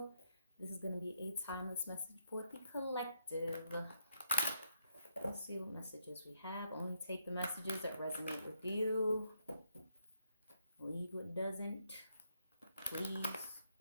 This is going to be a timeless message for the collective. Let's see what messages we have. Only take the messages that resonate with you. Leave what doesn't, please,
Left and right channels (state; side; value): inverted; both; correlation -0.76